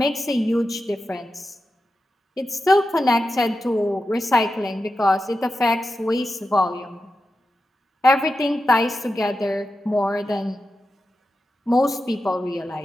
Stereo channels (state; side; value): normal; both; correlation 0.90